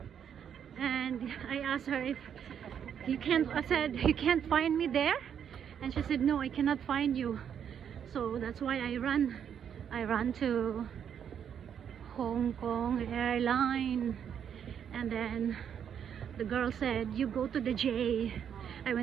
And I asked her if I said, you can't find me there? And she said, no, I cannot find you. So that's why I ran to Hong Kong Airline. And then the girl said, you go to the J. I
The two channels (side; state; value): left; quieter; 8.4 dB